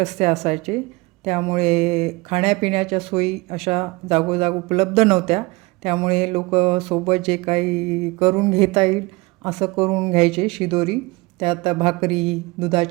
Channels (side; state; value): left; quieter; 23.8 dB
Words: असायचे. त्यामुळे खाण्यापिण्याच्या सोयी अशा जागोजाग उपलब्ध नव्हत्या. त्यामुळे लोक सोबत जे काही करून घेता येईल असं करून घ्यायचे. शिदोरी, त्यात भाकरी,